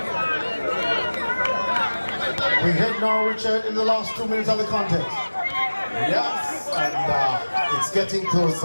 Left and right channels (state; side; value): inverted; both; correlation -1.00